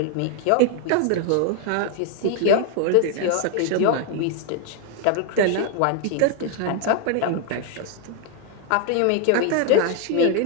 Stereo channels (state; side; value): different; both; correlation 0.00